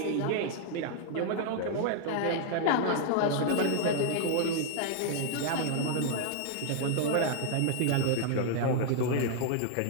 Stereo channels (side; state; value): both; different; correlation -0.01